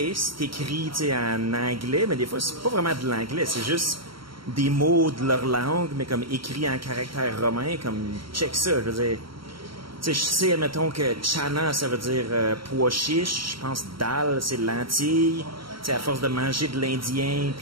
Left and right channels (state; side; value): late; left; 0.74 ms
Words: c'est écrit, tu sais, en anglais, mais des fois, c'est pas vraiment de l'anglais, c'est juste des mots de leur langue, mais comme écrit en caractère romain, comme, check ça, je veux dire. Tu sais, je sais, admettons que chana, ça veut dire pois chiche. Je pense dal, c'est lentilles. Tu sais, à force de manger de l'indien,